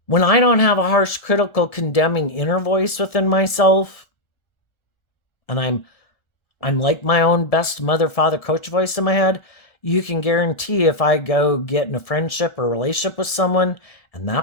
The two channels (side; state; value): right; late; 1.7 ms